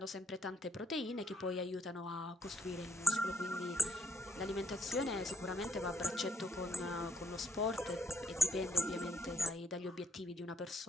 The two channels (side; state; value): both; normal; correlation 0.72